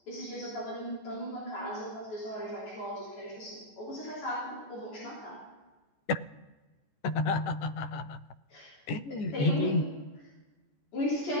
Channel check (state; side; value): late; right; 14 ms